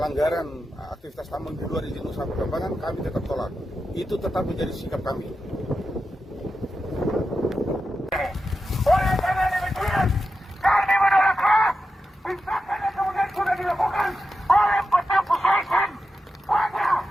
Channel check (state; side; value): normal; both; correlation 0.90